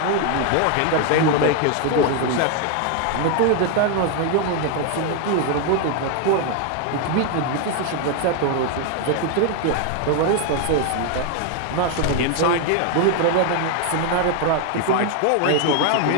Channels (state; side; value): different; both; correlation 0.01